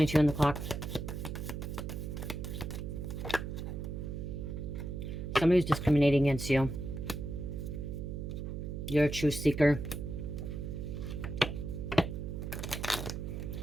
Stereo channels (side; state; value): right; noise; hum, 5 dB below the sound